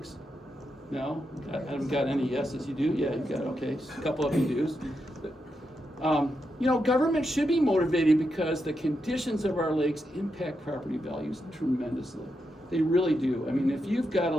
No? I haven't got any yeses. You do? Yeah, you got, okay. A couple of you do. Government should be motivated because the conditions of our lakes impact property values tremendously. They really do. I mean, if you've got a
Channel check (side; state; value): both; normal; correlation 0.85